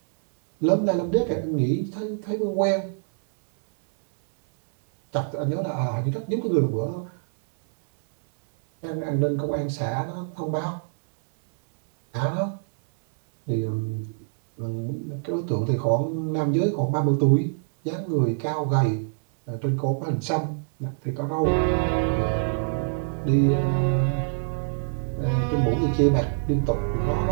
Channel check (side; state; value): left; silent; 62 dB below the other